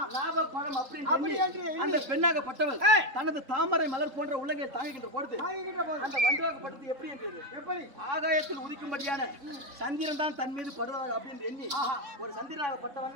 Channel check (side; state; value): left; late; 3.8 ms